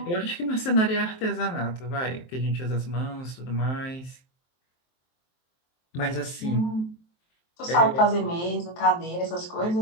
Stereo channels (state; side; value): late; right; 23 ms